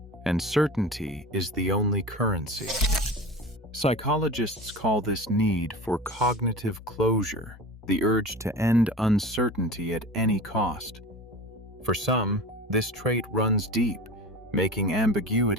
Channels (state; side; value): normal; both; correlation 0.34